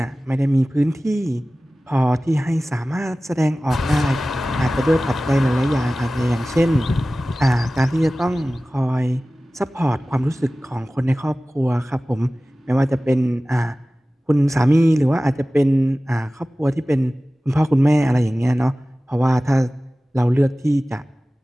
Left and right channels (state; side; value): normal; both; correlation 0.97